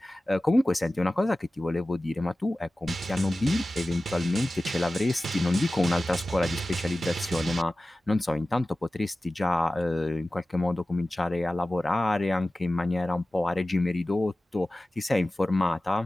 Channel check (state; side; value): normal; both; correlation 0.96